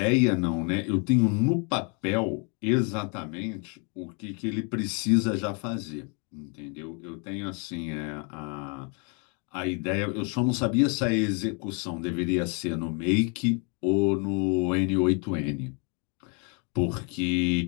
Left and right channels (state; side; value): quieter; right; 36.3 dB